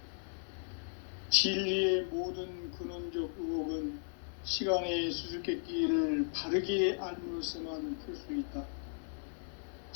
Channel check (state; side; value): silent; right; digital silence